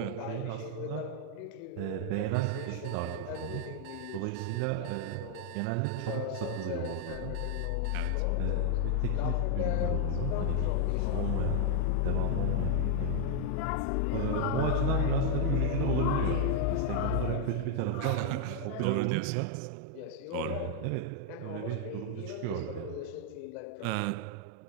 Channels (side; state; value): both; different; correlation 0.00